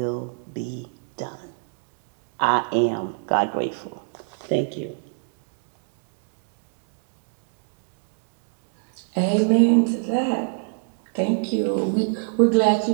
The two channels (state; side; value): silent; left; digital silence